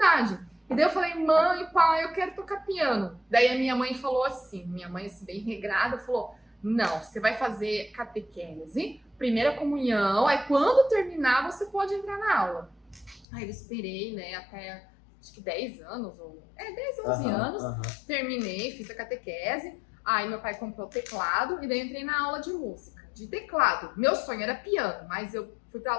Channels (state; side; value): drops out; right; at 13.2 s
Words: E daí eu falei, mãe, pai, eu quero tocar piano. Daí a minha mãe falou assim, minha mãe assim, bem regrada, falou, não, você vai fazer catequese, primeira comunhão, aí quando terminar você pode entrar na aula. Aí eu esperei, né, até acho que 10 anos, 10, 11 anos, terminei, fiz a catequese, aí meu pai comprou o teclado e daí entrei na aula de música, de teclado. Meu sonho era piano, mas eu fui pra